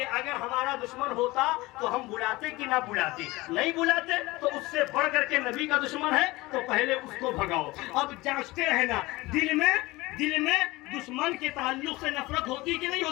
اگر ہمارا دشمن ہوتا تو ہم بلاتے کہ نہ بلاتے. نہیں بلاتے تو اس سے بڑھ کر کے نبی کا دشمن ہے تو پہلے اس کو بھگاؤ. اب جانچتے رہنا دل میں دشمن کے تعلق سے نفرت ہوتی کہ نہیں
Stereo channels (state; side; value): quieter; right; 20.8 dB